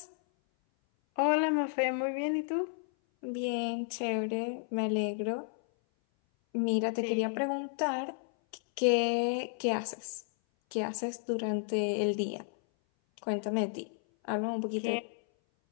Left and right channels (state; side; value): silent; right; 56 dB below the other